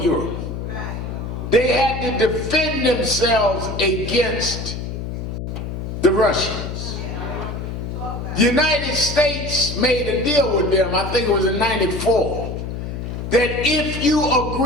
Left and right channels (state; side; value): noise; left; hum, 6 dB below the sound